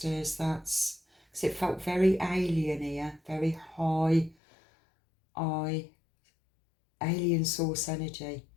That's because it felt very alien here, very high alien source energy,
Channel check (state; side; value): drops out; right; at 4.4 s